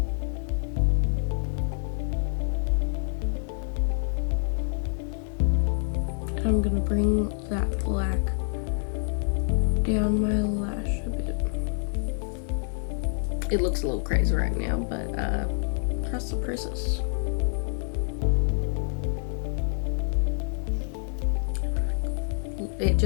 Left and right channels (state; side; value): silent; right; 60 dB below the other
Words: I'm gonna bring that black down my lash a bit. It looks a little crazy right now, but trust the process. It